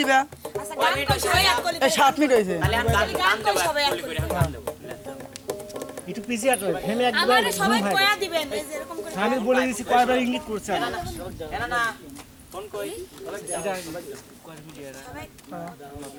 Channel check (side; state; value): both; identical; correlation 1.00